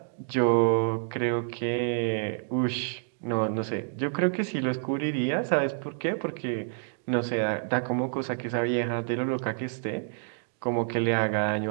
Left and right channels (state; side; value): silent; left; digital silence